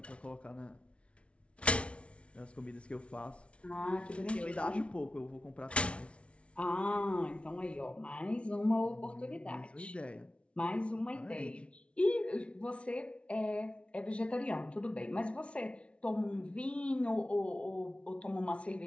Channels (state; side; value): late; right; 0.061 ms